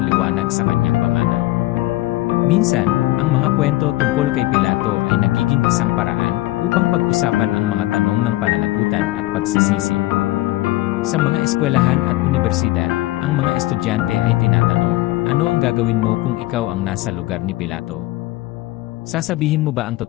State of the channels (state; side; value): quieter; right; 17.8 dB